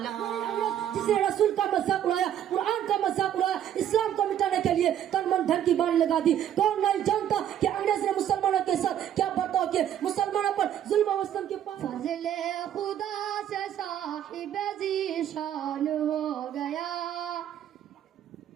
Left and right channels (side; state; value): left; quieter; 10.5 dB